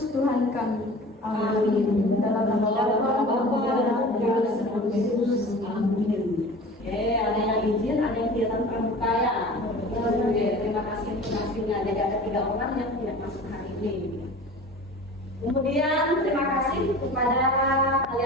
Tuhan kami. Amin. Dalam nama Bapa dan Yesus. Amin. Ada yang izin, ada yang kegiatan pramuka. Terima kasih untuk hasilnya. Jadi ada 3 orang yang tidak masuk hari ini. Kemudian terima kasih kepada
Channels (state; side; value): normal; both; correlation 0.39